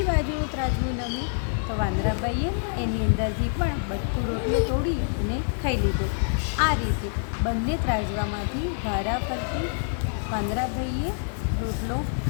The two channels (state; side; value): silent; right; digital silence